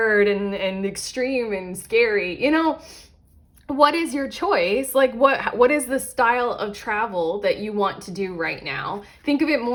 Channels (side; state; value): both; identical; correlation 1.00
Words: and extreme and scary. You know, what is your choice? Like what is the style of travel that you want to do right now? Think of it